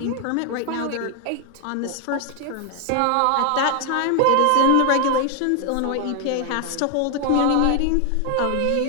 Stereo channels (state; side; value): different; both; correlation 0.00